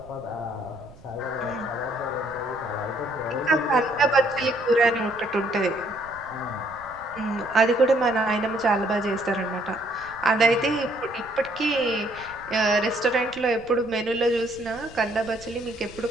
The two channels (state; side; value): noise; right; rumble, 22 dB below the sound